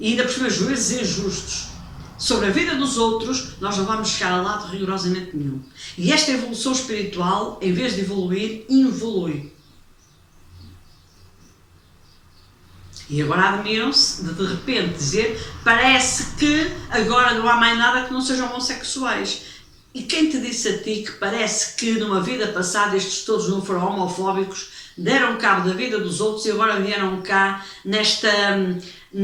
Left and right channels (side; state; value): both; identical; correlation 1.00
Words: ainda por cima juízes injustos, sobre a vida dos outros, nós não vamos chegar a lado rigorosamente nenhum. E esta evolução espiritual, em vez de evoluir, involui. E agora admiram-se de repente dizer, parece que agora não há mais nada que não sejam homossexuais. E quem te disse a ti que parece que numa vida passada estes todos não foram homofóbicos, deram cabo da vida dos outros e agora vieram cá nesta